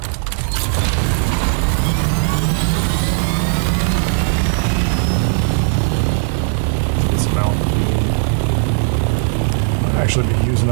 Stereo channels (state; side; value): silent; left; digital silence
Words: Actually be using